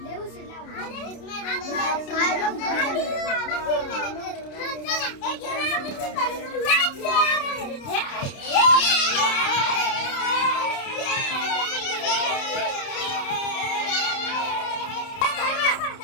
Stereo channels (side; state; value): right; late; 30 ms